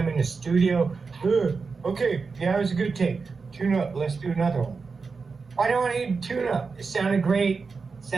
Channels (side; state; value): left; quieter; 4.7 dB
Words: in the studio. Okay, yeah, it was a good take. Tune up. Let's do another one. Why do I need to tune up? It sounded great.